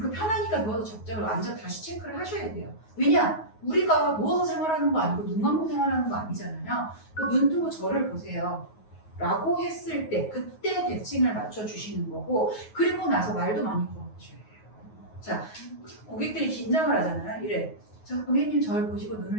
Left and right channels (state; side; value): late; right; 9.4 ms